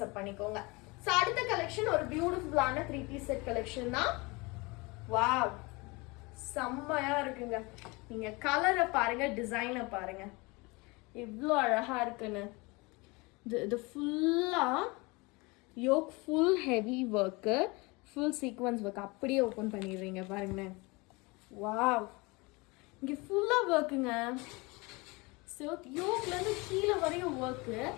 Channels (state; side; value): quieter; right; 25.8 dB